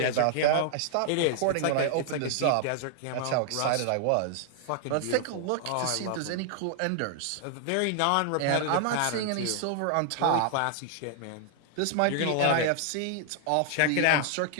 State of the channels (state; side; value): different; both; correlation 0.00